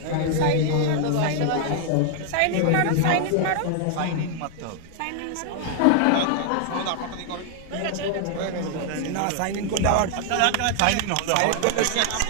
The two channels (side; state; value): both; different; correlation 0.00